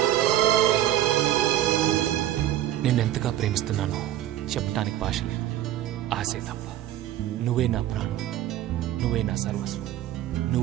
నిన్నెంతగా ప్రేమిస్తున్నానో చెప్పటానికి భాష లేదు. ఆశే తప్ప. నువ్వే నా ప్రాణం, నువ్వే నా సర్వస్వం.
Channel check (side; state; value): left; quieter; 12.7 dB